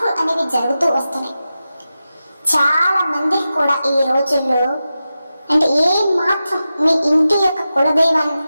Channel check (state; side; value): inverted; both; correlation -0.92